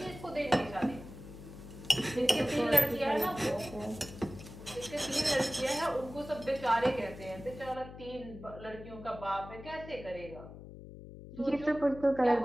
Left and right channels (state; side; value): noise; left; hum, 14 dB below the sound